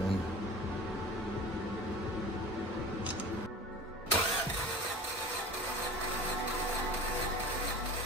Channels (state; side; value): normal; both; correlation 0.38